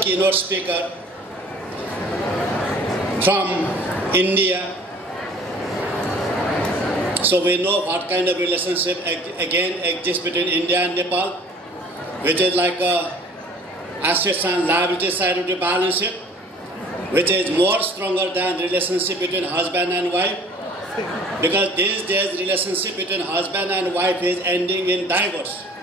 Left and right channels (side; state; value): both; normal; correlation 0.50